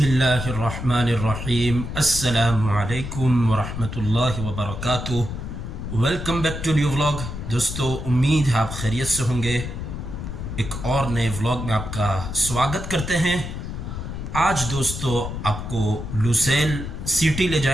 अस्सलामु अलैकुम वरहमतुल्लाहि वबरकातुह। Welcome back to new vlog. दोस्तों, उम्मीद है आप खैरियत से होंगे। एक और नए व्लॉग में आपका स्वागत करते हैं। आज दोस्तों आपको लुसेल सिटी ले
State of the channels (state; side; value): noise; left; rumble, 7 dB below the sound